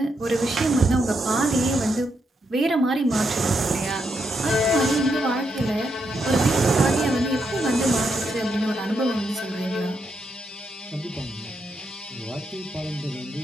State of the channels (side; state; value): both; normal; correlation 0.81